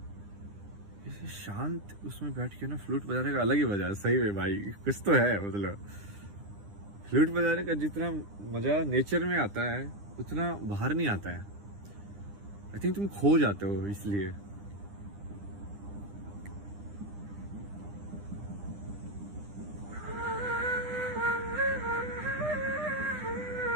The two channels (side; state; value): left; late; 9.9 ms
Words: इसे शांत उसमें बैठ के ना फ्लूट बजाने का अलग ही मजा है। सही में भाई, कुछ तो है। मतलब फ्लूट बजाने का जितना मजा नेचर में आता है उतना बाहर नहीं आता है। आई थिंक तुम खो जाते हो इसलिए।